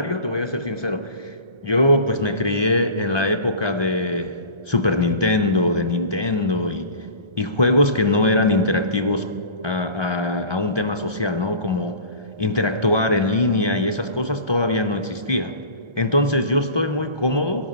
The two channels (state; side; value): late; left; 1.3 ms